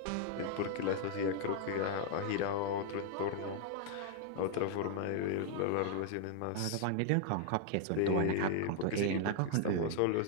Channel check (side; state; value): both; different; correlation 0.00